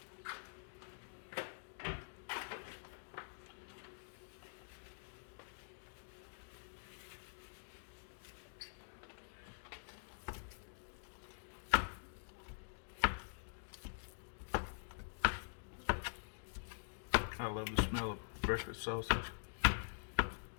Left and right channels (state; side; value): silent; right; digital silence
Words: I love the smell of breakfast sausage.